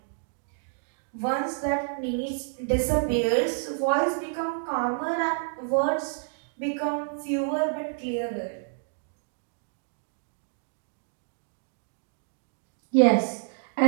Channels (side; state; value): left; silent; digital silence